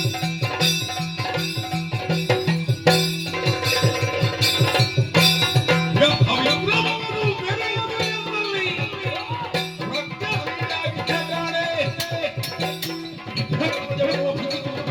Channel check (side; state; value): both; identical; correlation 1.00